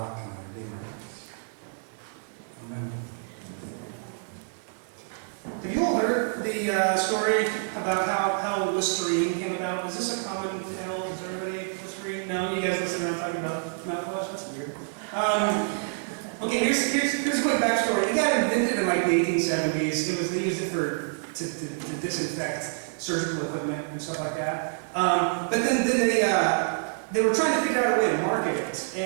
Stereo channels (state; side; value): silent; left; digital silence